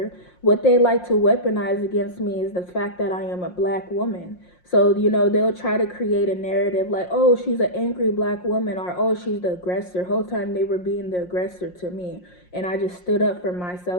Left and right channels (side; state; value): right; late; 5.6 ms